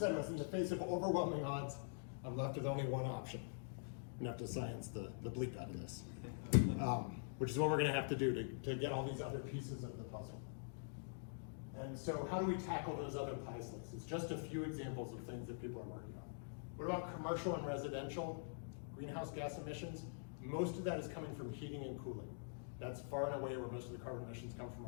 was, in the face of overwhelming odds, I'm left with only one option. I'm gonna have to science the bleep out of this. Which is what we're gonna have to do to get all these other pieces of the puzzle. And so how do we tackle those other pie slices? Just a few examples of things that people are working on. What about commercial and residential greenhouse gas emissions? Most of that is coming from heating and cooling. That's far and away where most of the carbon emissions come from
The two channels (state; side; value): silent; right; digital silence